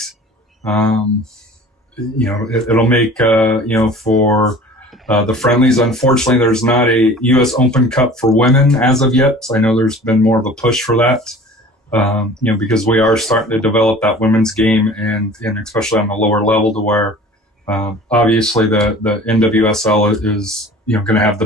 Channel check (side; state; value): both; normal; correlation 0.44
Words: It'll make, for the friendlies. Unfortunately, there's not a U.S. Open Cup for women as of yet. I know there's been more of a push for that, because we are starting to develop that women's game and especially on the lower level to where obviously the NWSL is, going to have the